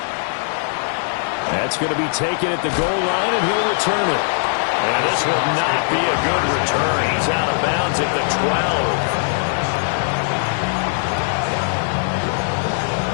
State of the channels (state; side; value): silent; right; digital silence